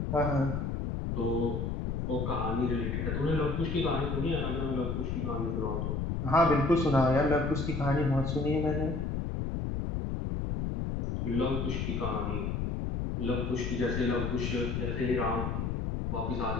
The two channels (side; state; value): left; noise; rumble, 1 dB below the sound